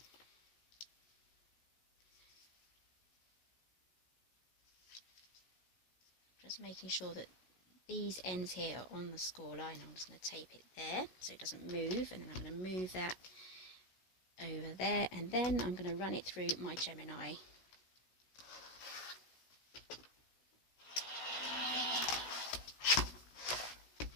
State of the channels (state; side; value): late; right; 16 ms